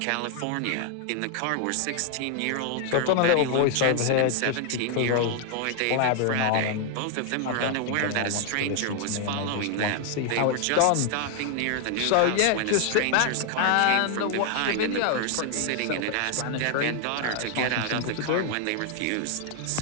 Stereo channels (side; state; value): both; different; correlation 0.00